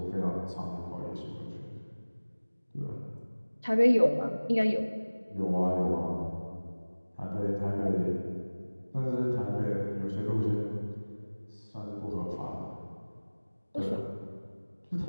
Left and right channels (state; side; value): inverted; both; correlation -1.00